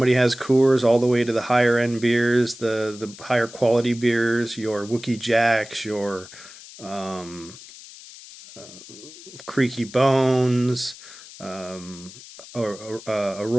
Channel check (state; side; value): noise; left; hiss, 17 dB below the sound